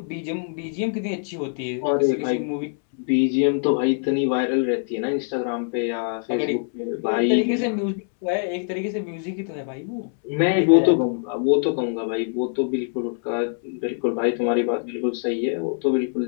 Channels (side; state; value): right; silent; 62 dB below the other